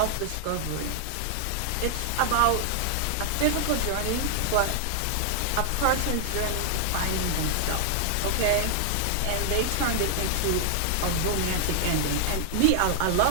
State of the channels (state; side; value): different; both; correlation 0.00